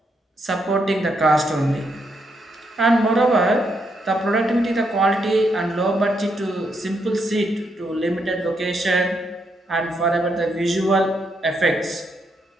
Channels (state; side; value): normal; both; correlation 0.78